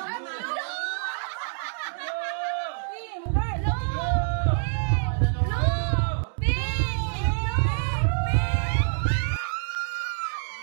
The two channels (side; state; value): left; silent; digital silence